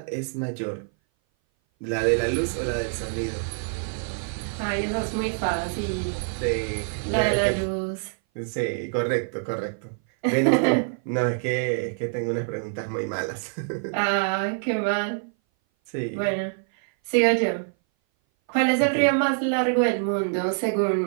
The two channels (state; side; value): silent; left; 58 dB below the other